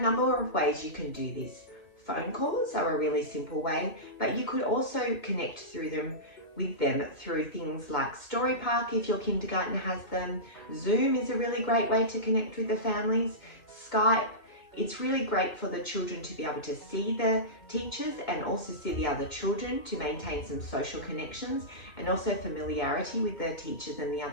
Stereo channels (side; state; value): right; late; 2.0 ms